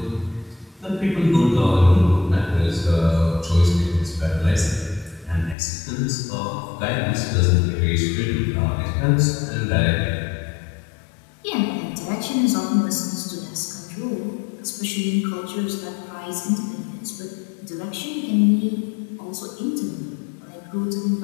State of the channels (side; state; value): right; drops out; at 5.6 s